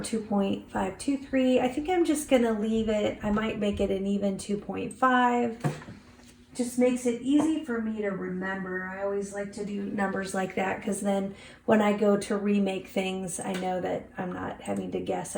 I think I'm just going to leave it. I might make it an even 2.5. Just makes it easy for me to remember. I always like to do numbers like that because then when I go to remake things, I know that I'm not having to guess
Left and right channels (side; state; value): both; identical; correlation 1.00